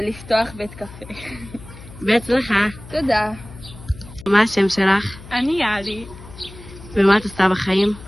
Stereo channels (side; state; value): left; noise; hum, 17 dB below the sound